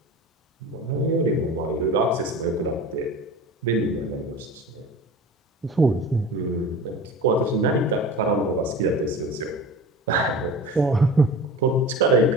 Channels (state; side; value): normal; both; correlation 0.36